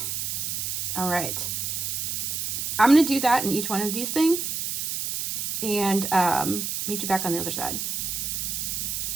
All right. I'm going to do that in each one of these things and meet you back on the other side.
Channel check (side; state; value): right; noise; hiss, 2 dB below the sound